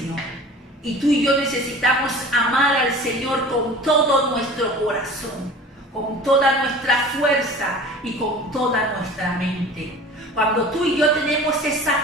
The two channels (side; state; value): both; normal; correlation 0.41